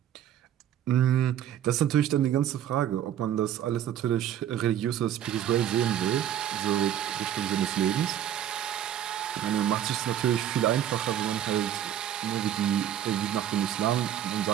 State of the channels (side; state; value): left; quieter; 10.7 dB